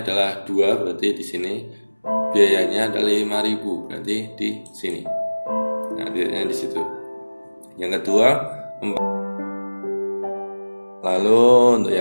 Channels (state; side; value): inverted; both; correlation -1.00